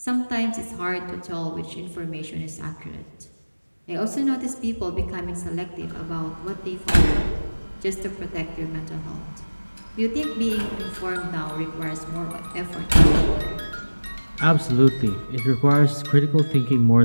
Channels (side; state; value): both; inverted; correlation -1.00